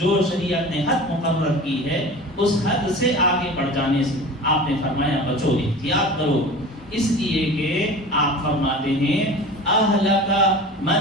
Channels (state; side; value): normal; both; correlation 0.37